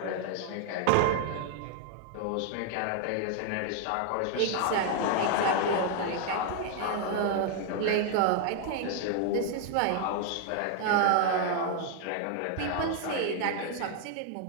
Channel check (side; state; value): both; different; correlation 0.00